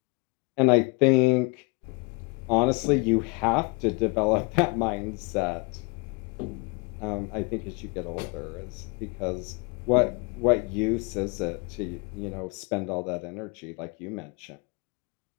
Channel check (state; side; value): quieter; right; 30.8 dB